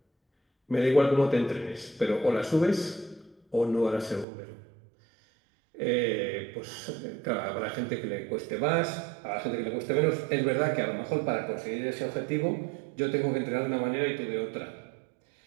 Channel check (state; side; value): drops out; left; at 4.2 s